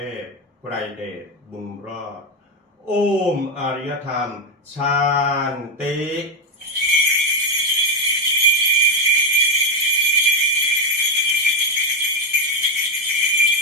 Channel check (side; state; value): both; normal; correlation 0.08